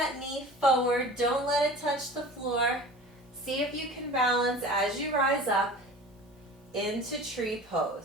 knee forward. Don't let it touch the floor. See if you can balance as you rise up into tree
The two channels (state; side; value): normal; both; correlation 0.39